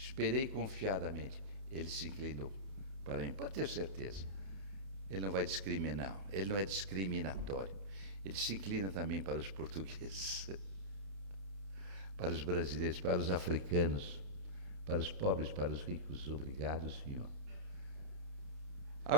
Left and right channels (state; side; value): late; left; 31 ms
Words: confiadamente. Ele se inclinou para mim. Pode ter certeza. Ele não vai discriminar. Ele não é discriminatório. Ele se inclina também para os portugueses, para os brasileiros, para os africanos, para os pobres, para os ricos. Obrigado, Senhor.